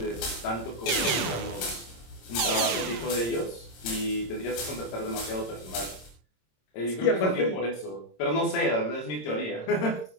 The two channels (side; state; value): right; late; 26 ms